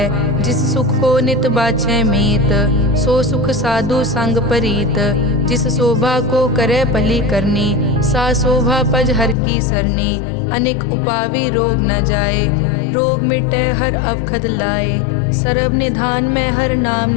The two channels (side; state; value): right; drops out; at 9.3 s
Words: जिस सुख को नित बाछै मीत सो सुख साधु संग परीत। जिस शोभा को करे भली करनी सा शोभा पज हर की सरनी। अनेक उपावी रोग न जाए रोग मिटे हर अवखद लाए। सर्व निधान में हर नाम